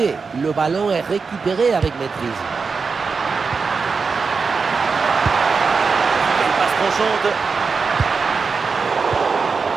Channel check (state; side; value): quieter; left; 5.0 dB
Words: Le ballon est récupéré avec maîtrise. Une passe tranchante.